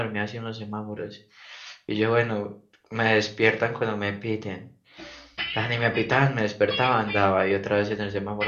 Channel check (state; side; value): identical; both; correlation 1.00